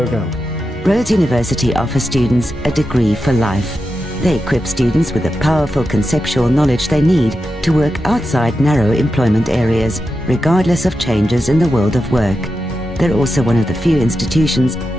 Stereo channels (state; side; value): normal; both; correlation 0.90